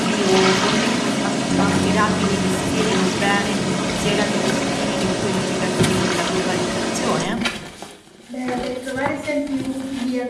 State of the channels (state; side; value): identical; both; correlation 1.00